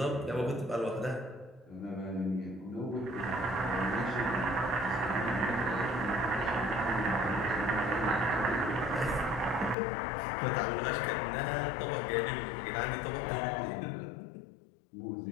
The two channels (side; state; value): right; drops out; at 9.8 s